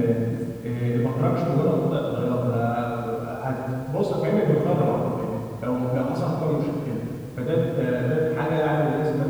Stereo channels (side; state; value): both; identical; correlation 1.00